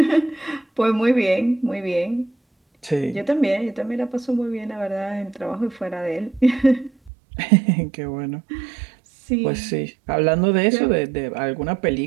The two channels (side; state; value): left; drops out; at 7.1 s